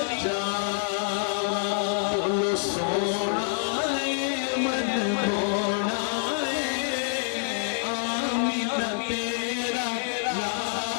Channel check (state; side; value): silent; right; digital silence